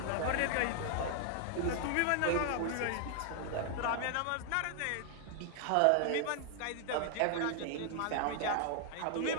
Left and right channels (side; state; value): both; different; correlation 0.00